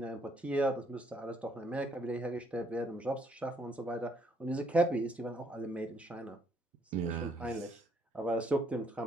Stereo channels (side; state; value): both; normal; correlation 0.69